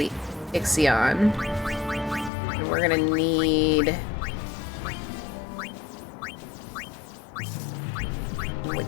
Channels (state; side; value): drops out; right; at 2.3 s